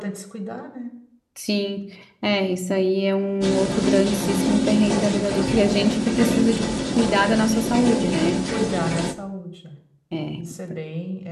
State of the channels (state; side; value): identical; both; correlation 1.00